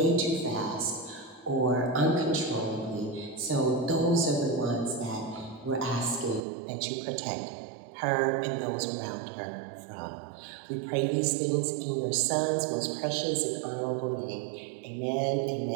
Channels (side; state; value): left; drops out; at 6.4 s